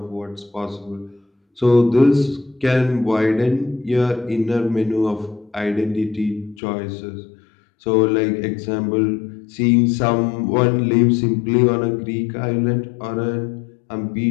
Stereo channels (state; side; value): drops out; right; at 6.6 s